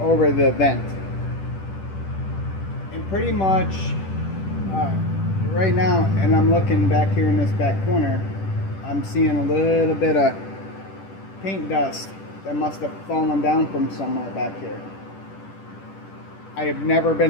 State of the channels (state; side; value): late; right; 10 ms